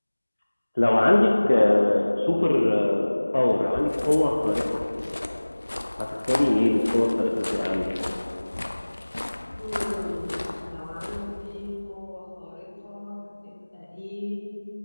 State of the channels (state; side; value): inverted; both; correlation -1.00